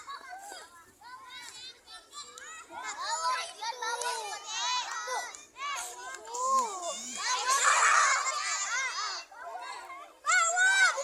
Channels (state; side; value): identical; both; correlation 1.00